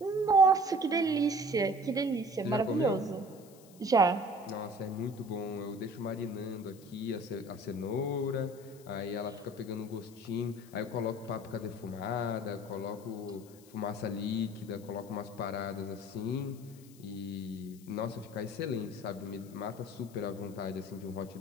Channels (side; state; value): left; noise; hiss, 24 dB below the sound